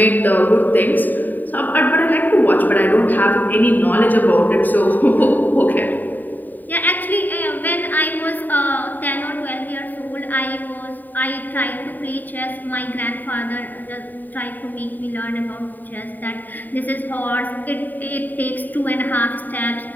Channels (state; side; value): late; right; 0.088 ms